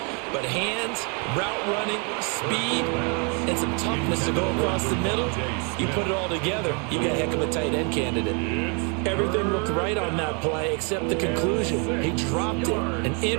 but hands, route running, speed, and some toughness to go across the middle, you put it all together, you got a heck of a tight end candidate. Everything looked right on that play except the conclusion. He dropped it, an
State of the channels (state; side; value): quieter; left; 35.6 dB